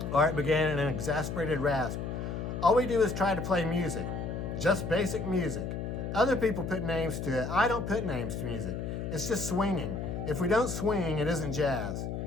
Art began in an exasperated rasp. All we do is try to play music, just basic music. Other people put names to it. I don't put names to music. It's just swinging. If we don't swing, it isn't jazz.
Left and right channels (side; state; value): left; noise; hum, 4 dB below the sound